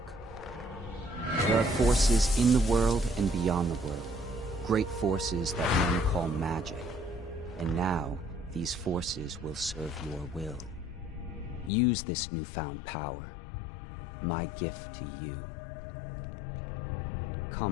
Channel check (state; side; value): drops out; right; at 11.7 s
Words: There are forces in the world and beyond the world, great forces that men call magic, and now these forces will serve your will. Use this newfound power, my gift to you.